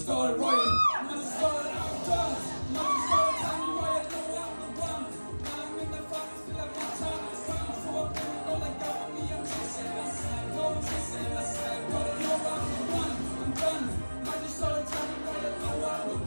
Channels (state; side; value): inverted; both; correlation -1.00